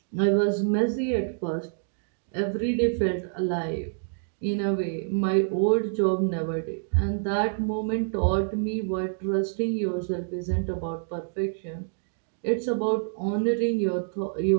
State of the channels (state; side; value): silent; left; digital silence